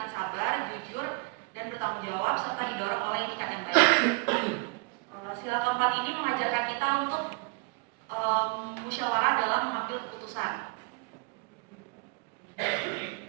sabar, jujur, dan bertanggung jawab serta didorong oleh etikat yang baik. Sila keempat ini mengajarkan kita untuk musyawarah dalam mengambil keputusan.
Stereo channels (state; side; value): quieter; left; 29.3 dB